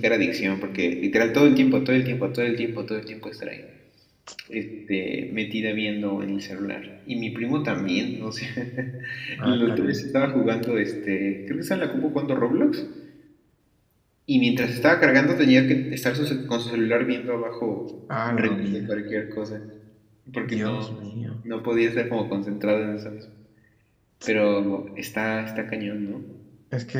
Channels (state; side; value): identical; both; correlation 1.00